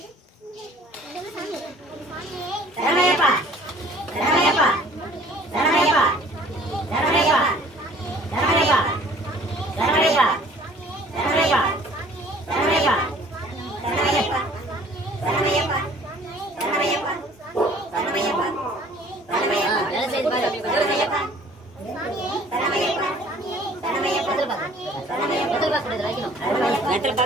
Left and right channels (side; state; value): both; normal; correlation 0.53